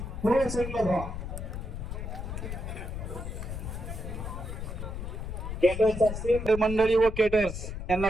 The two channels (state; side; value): noise; left; rumble, 6 dB below the sound